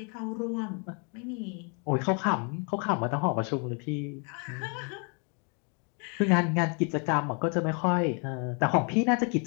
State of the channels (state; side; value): quieter; right; 36.9 dB